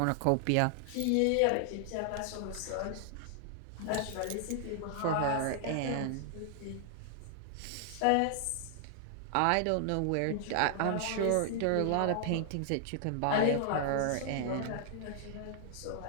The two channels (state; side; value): different; both; correlation 0.00